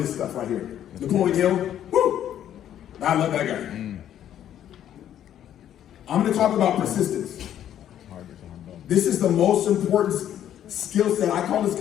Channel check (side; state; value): right; quieter; 10.7 dB